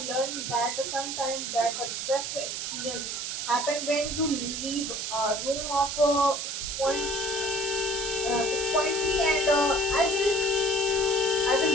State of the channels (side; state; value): right; noise; hiss, 4 dB below the sound